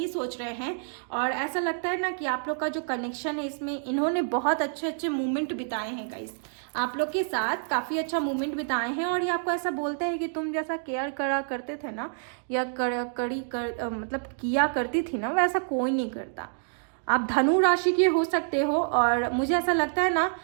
सोच रहे हैं। और ऐसा लगता है ना कि आप लोग का जो कनेक्शन है इसमें इन्होंने बहुत अच्छे मोमेंट बिताए हैं गाइस। आप लोग के साथ काफ़ी अच्छा मोमेंट बिताए हैं और ये आपको ऐसा बोलते हैं कि तुम जैसा केयर करा करते थे ना, या मतलब किया करती थी ना, वैसा कोई नहीं करता। आप धनु राशि के हो सकते हो और मुझे ऐसा लगता है ना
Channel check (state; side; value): silent; left; digital silence